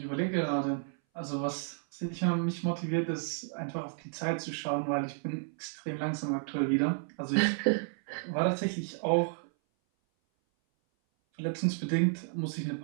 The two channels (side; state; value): left; silent; 56 dB below the other